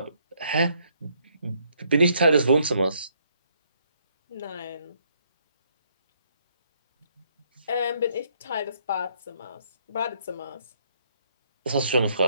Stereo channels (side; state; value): both; inverted; correlation -0.70